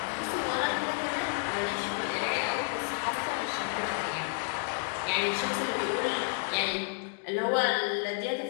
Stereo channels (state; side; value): silent; right; 57 dB below the other